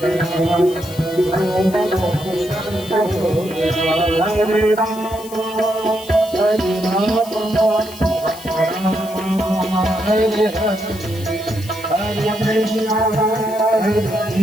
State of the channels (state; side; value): noise; left; hiss, 17 dB below the sound